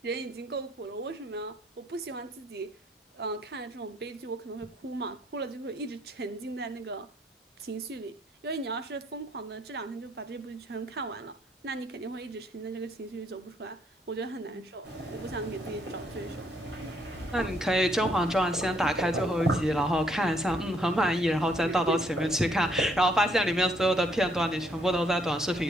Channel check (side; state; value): both; normal; correlation 0.69